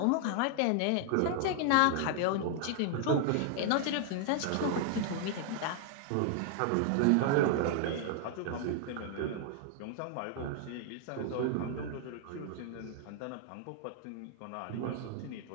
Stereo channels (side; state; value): both; different; correlation 0.00